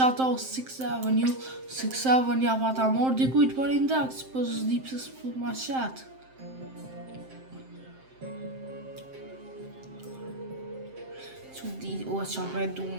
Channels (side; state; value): left; late; 7.6 ms